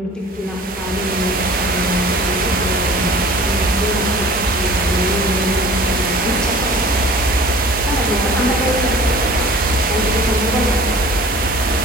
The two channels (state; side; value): normal; both; correlation 0.45